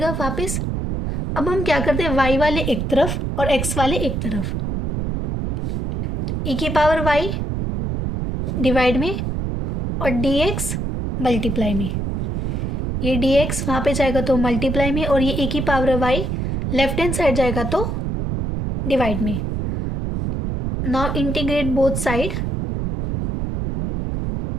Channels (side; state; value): right; noise; rumble, 2 dB below the sound